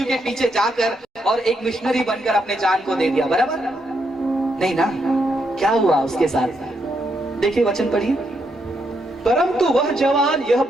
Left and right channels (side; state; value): both; normal; correlation 0.78